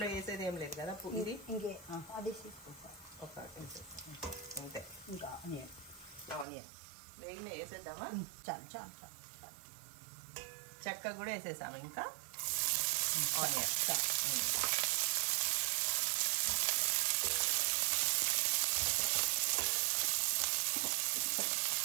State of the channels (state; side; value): drops out; left; at 6.5 s